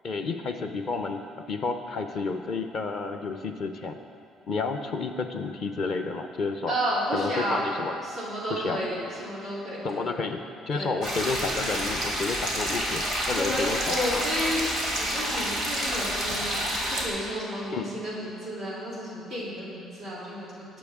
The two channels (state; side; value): normal; both; correlation 0.65